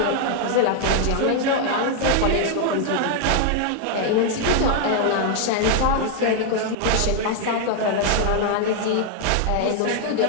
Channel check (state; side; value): different; both; correlation 0.00